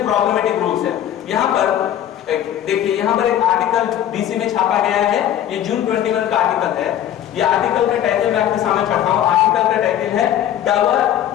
پرابلمٹک رولس ہیں۔ یہاں پر دیکھیے یہاں پر ایک آرٹیکل DC میں چھاپا گیا ہے، یہ جون 21 کا آرٹیکل ہے۔ یہ آرٹیکل کا ٹائٹل میں آپ کے سامنے پڑھتا ہوں۔ آرٹیکل کا ٹائٹل ہے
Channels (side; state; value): right; quieter; 11.0 dB